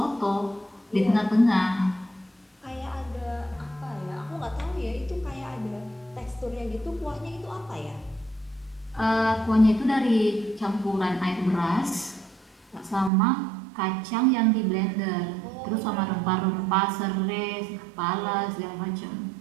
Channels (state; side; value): drops out; left; at 13.1 s